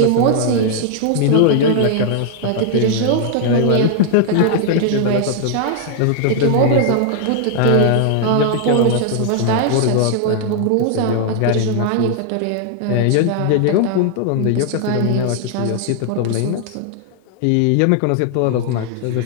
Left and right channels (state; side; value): different; both; correlation 0.00